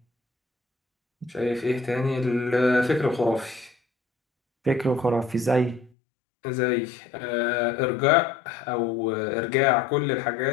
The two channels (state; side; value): drops out; right; at 5.9 s